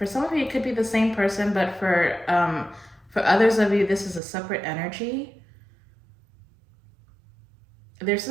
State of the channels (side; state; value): left; drops out; at 4.2 s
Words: some of you, it could be the same person, but for others of you, this is a separate energy. There's